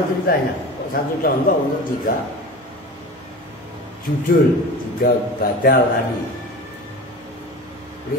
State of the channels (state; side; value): normal; both; correlation 0.33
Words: ceritanya? Kok satu contoh untuk 3 judul, 3 badal tadi.